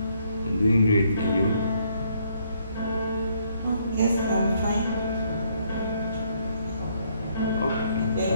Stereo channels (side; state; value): both; inverted; correlation -0.70